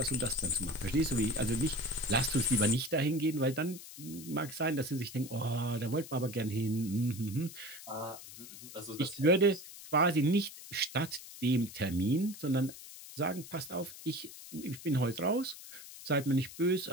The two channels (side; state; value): left; noise; hiss, 15 dB below the sound